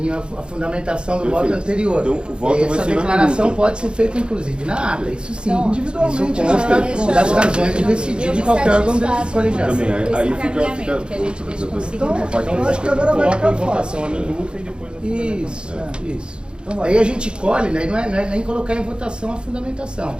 à fundamentação do voto Perfeito. anterior. Então, o voto E vai essa ser na declaração minuta. pode ser feita, inclusive, na ata, isso sim. individualmente, Isso consta das razões de decidir de qualquer órgão colegiado. Também, aí fica que a gente deixa conseguir. Eu acho que agora vai Coloca ficar em fácil. votação a minuta e depois a Isso. Aí a gente colhe, né? Não é nem colocar em votação a fundamentação.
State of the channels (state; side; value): late; left; 0.052 ms